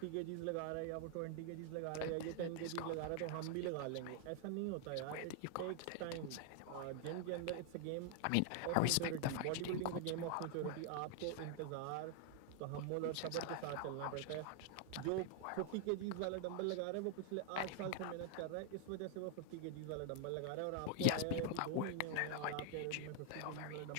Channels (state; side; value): different; both; correlation 0.00